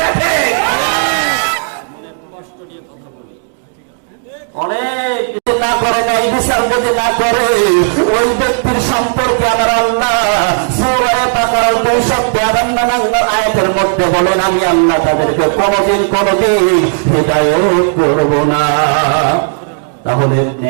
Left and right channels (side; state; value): left; silent; digital silence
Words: কষ্ট নিয়ে কথা বলি। অনেক না করে নাই বিচার যদি না করে ওই ব্যক্তির সম্পর্কে আমার আল্লাহ সূরা বাকারা 252 আয়াতের মধ্যে বলেন, আমি আল্লাহ তাদেরকে কোনদিন হিদায়াত করব না। তাহলে